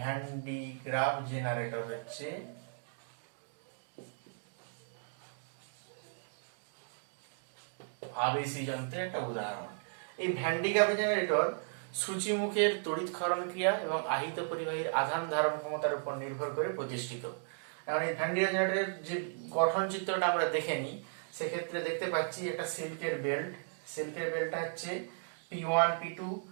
ডি গ্রাফ জেনারেটর হচ্ছে আবেশী যন্ত্রের একটা উদাহরণ। এই ভ্যান ডি গ্রাফ জেনারেটর সূচিমুখের তড়িৎ ক্ষরণ ক্রিয়া এবং আহিত পরিবাহীর আধান ধারণ ক্ষমতার উপর নির্ভর করে প্রতিষ্ঠিত। এখন এই ভ্যান ডিরাক জেনারেটরের যে গঠন চিত্রটা আমরা দেখে নিই, সেক্ষেত্রে দেখতে পাচ্ছি একটা সিল্কের বেল্ট। সিল্কের বেল্টটা হচ্ছে P1 P2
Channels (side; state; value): left; silent; digital silence